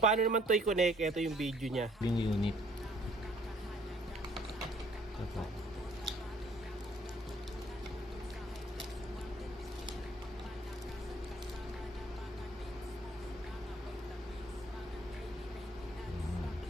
naman to i-connect, ito yung video niya. Yung unit. Ito.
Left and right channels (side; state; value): both; normal; correlation 0.61